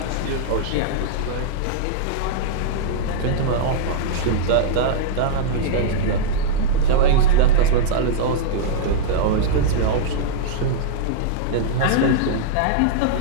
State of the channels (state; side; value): different; both; correlation -0.01